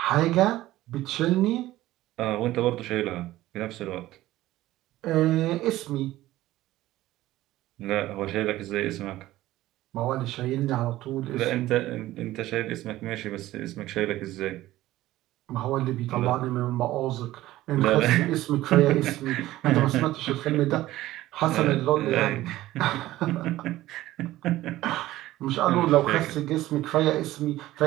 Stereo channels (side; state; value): left; quieter; 15.9 dB